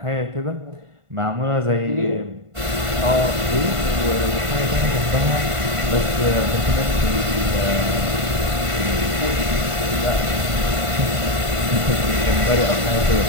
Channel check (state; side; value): late; left; 1.5 ms